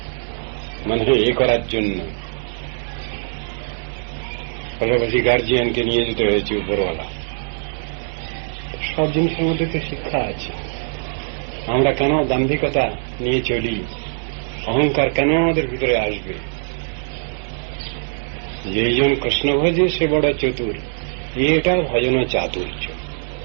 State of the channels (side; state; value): left; silent; digital silence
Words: মানে এ করার জন্য। পাশাপাশি গার্জিয়ানকে নিয়ে যেতে হয়েছে উপরওয়ালা। সব জিনিসের মধ্যে তো শিক্ষা আছে। আমরা কেন দাম্ভিকতা নিয়ে চলি? অহংকার কেন আমাদের ভিতরে আসবে? যেইজন কৃষ্ণ ভজে সে বড় চতুর, এটা ভজন চাতুর্য।